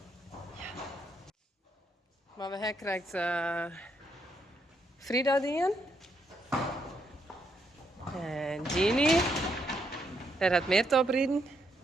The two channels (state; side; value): normal; both; correlation 0.77